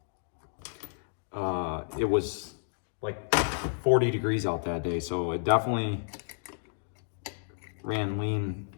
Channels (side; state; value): right; silent; digital silence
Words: It was like 40 degrees out that day, so it definitely ran lean